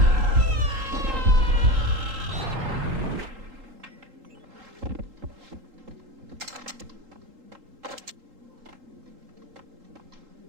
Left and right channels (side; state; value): left; late; 3.8 ms